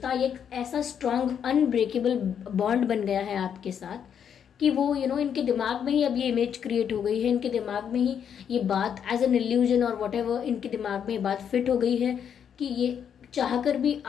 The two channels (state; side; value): quieter; right; 8.2 dB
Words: एक ऐसा स्ट्रांग अनब्रेकेबल बॉन्ड बन गया है आपके साथ कि वो इनके दिमाग में ही अब ये इमेज क्रिएट हो गई है, इनके दिमाग में ही ये बात एज एन इल्यूजन और व्हाटएवर, इनके दिमाग में ये बात फिट हो गई है कि ये चाहकर भी